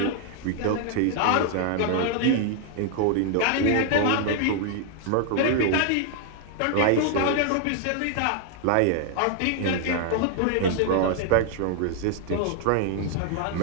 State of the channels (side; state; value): both; different; correlation 0.00